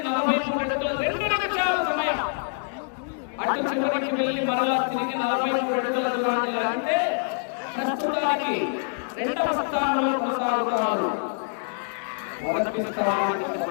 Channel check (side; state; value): right; silent; digital silence